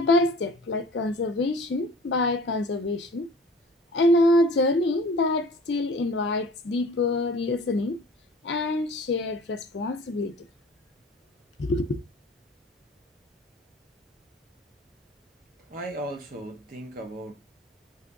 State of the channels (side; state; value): both; normal; correlation 0.45